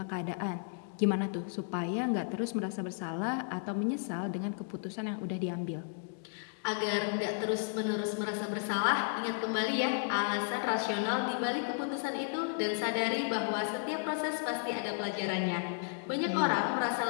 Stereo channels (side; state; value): right; silent; digital silence